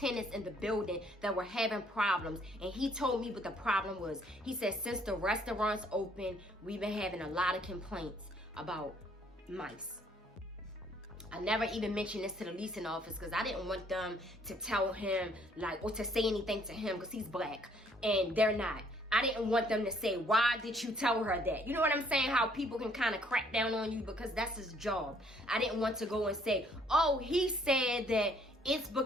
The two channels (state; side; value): normal; both; correlation 0.64